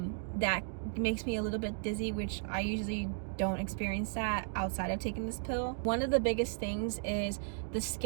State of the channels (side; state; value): left; silent; 54 dB below the other